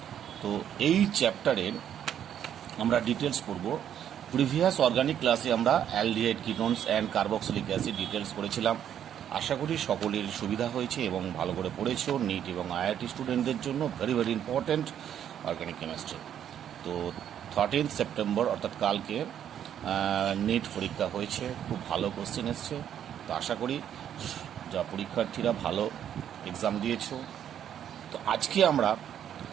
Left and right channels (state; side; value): quieter; left; 9.7 dB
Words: তো এই চ্যাপ্টারের আমরা ডিটেলস পড়ব। প্রিভিয়াস অর্গানিক ক্লাসে আমরা aldehyde ketones and carboxylic acid details পড়েছিলাম। আশা করি সকলের সুবিধা হয়েছে এবং ভালো করে পড়েছো। নিট এবং আইআইটি স্টুডেন্টদের জন্য very very important organic chemistry. তো 13 সেপ্টেম্বর অর্থাৎ কালকে নিট পরীক্ষা হয়েছে, খুব ভালো কোশ্চেন এসছে। তো আশা করি যা পরীক্ষার্থীরা ভালো এক্সাম দিয়েছো। তো আজকে আমরা